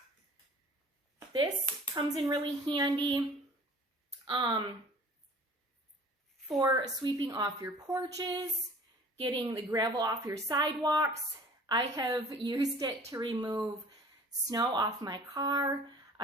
This comes in really handy for sweeping off your porches, getting the gravel off your sidewalks. I have used it to remove snow off my car.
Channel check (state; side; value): normal; both; correlation 0.47